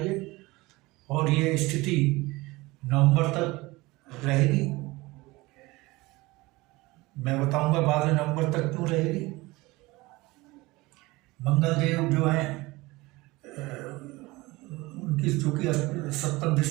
है और ये स्थिति नवंबर तक रहेगी। मैं बताऊंगा बाद में नवंबर तक क्यों रहेगी। मंगल देव जो है उनकी चूंकि सप्तम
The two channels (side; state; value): left; quieter; 21.5 dB